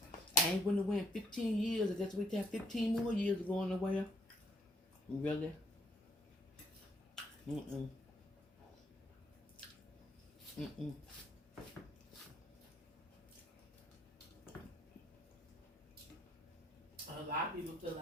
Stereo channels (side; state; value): both; normal; correlation 0.67